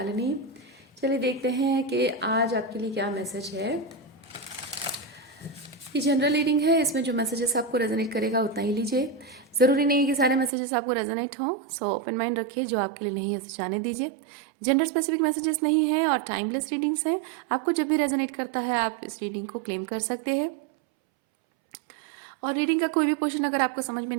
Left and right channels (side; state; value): left; drops out; at 10.5 s